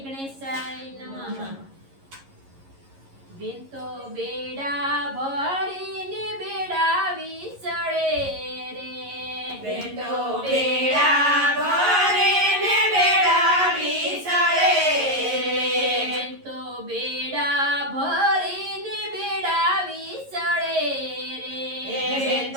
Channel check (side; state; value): left; late; 11 ms